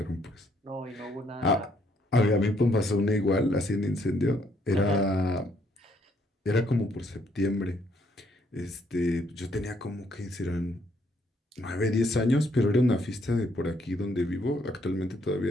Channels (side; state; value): both; normal; correlation 0.70